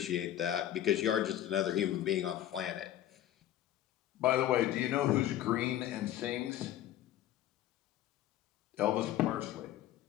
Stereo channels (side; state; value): right; quieter; 12.3 dB